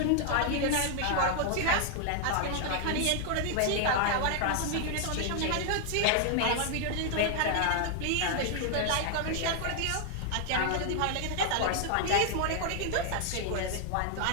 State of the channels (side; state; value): both; different; correlation 0.00